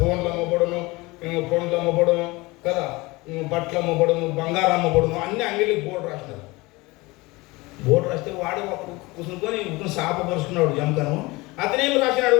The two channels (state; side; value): quieter; right; 22.8 dB